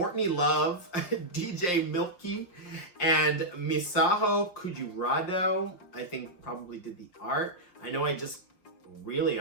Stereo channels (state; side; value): late; right; 5.7 ms